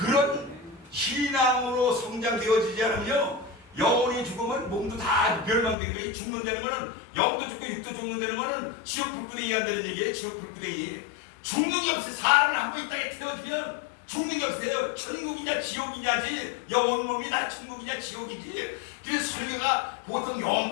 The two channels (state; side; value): drops out; right; at 5.8 s